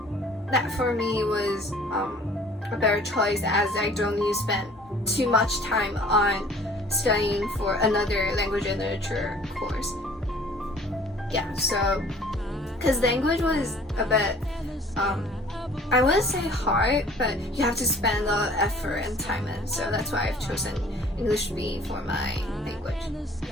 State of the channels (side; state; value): both; normal; correlation 0.52